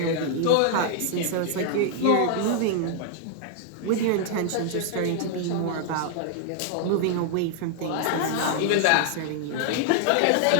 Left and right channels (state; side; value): different; both; correlation -0.01